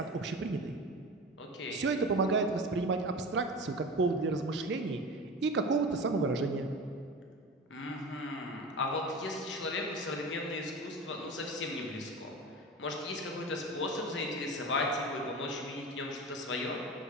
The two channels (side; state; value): both; normal; correlation 0.31